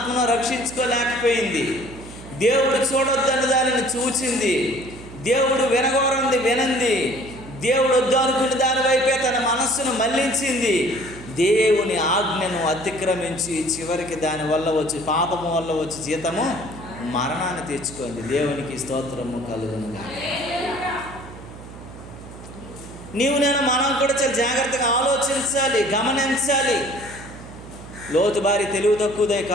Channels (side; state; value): right; noise; hum, 15 dB below the sound